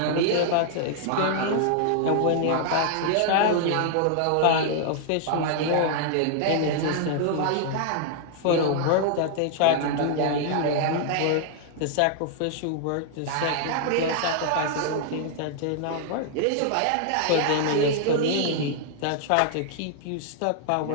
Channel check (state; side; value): different; both; correlation -0.01